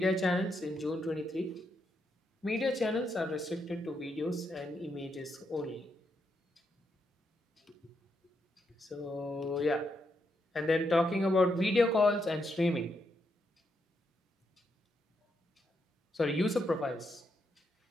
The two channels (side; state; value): both; normal; correlation 0.80